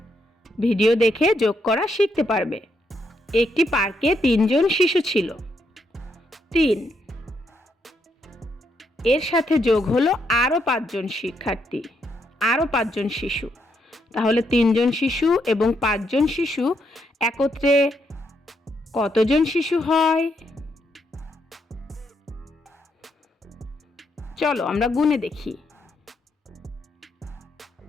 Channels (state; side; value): normal; both; correlation 0.78